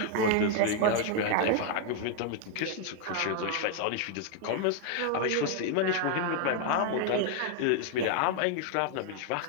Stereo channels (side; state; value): both; different; correlation 0.00